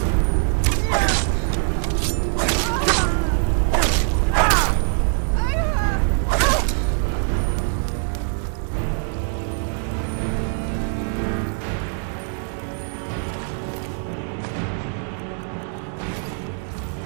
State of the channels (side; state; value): left; silent; 56 dB below the other